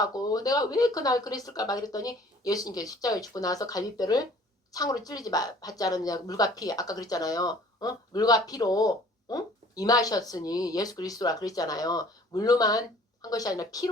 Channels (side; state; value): both; normal; correlation 0.52